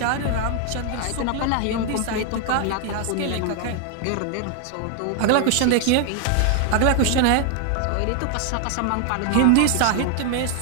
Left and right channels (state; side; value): different; both; correlation 0.00